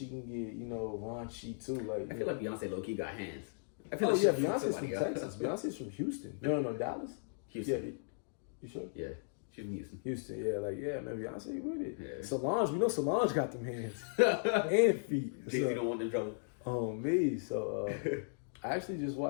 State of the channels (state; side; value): silent; right; digital silence